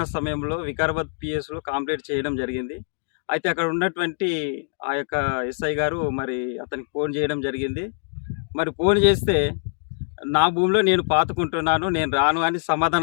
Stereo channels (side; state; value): right; silent; digital silence